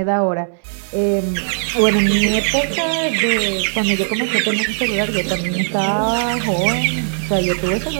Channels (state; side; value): silent; left; 60 dB below the other